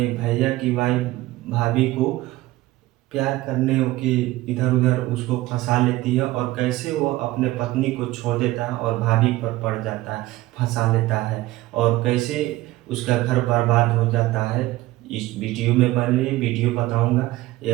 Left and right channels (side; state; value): left; quieter; 17.7 dB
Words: भैया की वाइफ़ भाभी को प्यार करने के इधर-उधर उसको फँसा लेती है, और कैसे वो अपने पत्नी को छोड़ देता है और भाभी पर पड़ जाता है, फँसा लेता है, और कैसे उसका घर बर्बाद हो जाता है। इस वीडियो में बने वीडियो बताऊँगा।